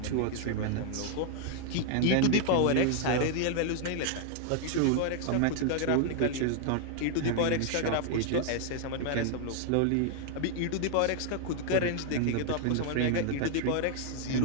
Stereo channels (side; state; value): both; different; correlation 0.00